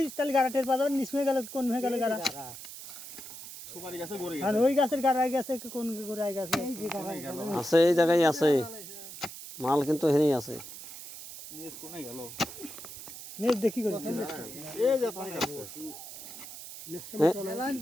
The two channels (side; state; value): right; noise; hiss, 12 dB below the sound